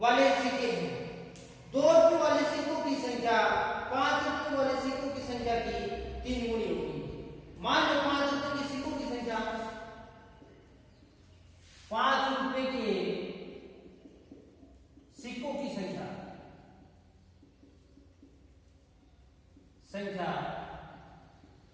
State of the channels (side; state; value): both; identical; correlation 1.00